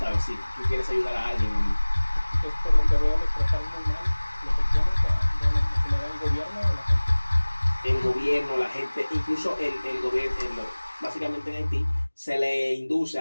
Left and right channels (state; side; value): inverted; both; correlation -1.00